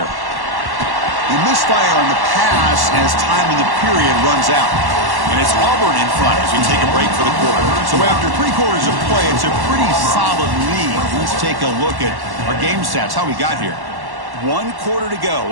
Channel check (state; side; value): late; left; 1.1 ms